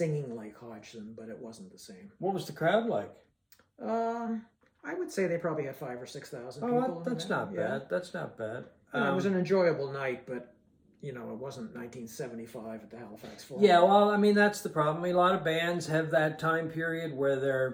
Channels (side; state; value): both; identical; correlation 1.00